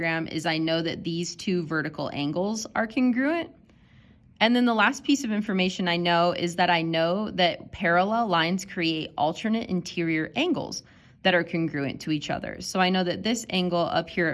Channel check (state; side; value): identical; both; correlation 1.00